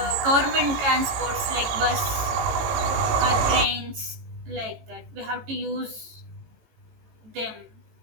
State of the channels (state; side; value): late; left; 18 ms